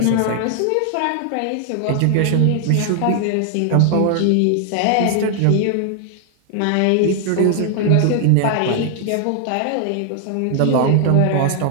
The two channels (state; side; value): different; both; correlation 0.00